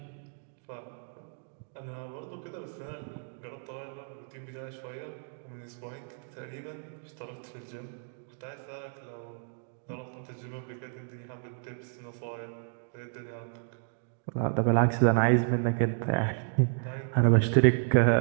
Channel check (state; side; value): silent; left; 57 dB below the other